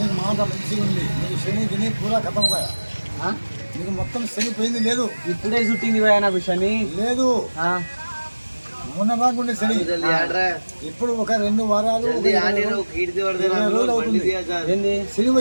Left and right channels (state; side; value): inverted; both; correlation -1.00